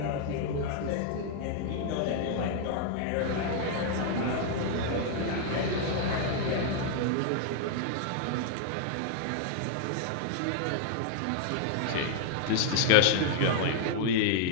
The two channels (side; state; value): both; different; correlation -0.01